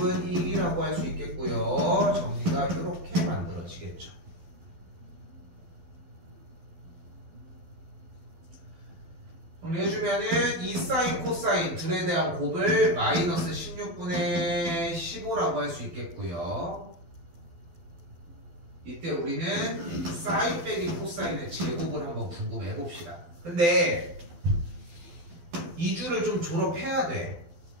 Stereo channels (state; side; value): late; left; 12 ms